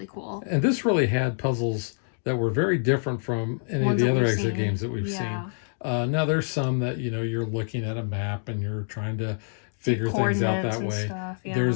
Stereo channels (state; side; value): silent; right; 61 dB below the other